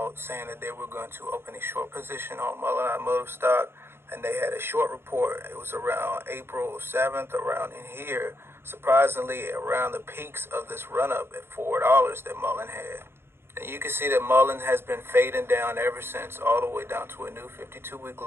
saying that they were going to open a short position on Mullen Automotive stock, and they had a short report. It was around April 7th, around in here, surprisingly around the peaks of this run-up at $4 that Mullen had. And you can see that Mullen has been fading down ever since, all the way down to a new 52-week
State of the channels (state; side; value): late; left; 0.11 ms